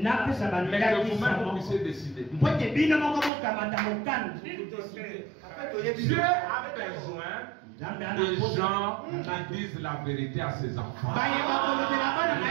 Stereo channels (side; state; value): left; drops out; at 3.3 s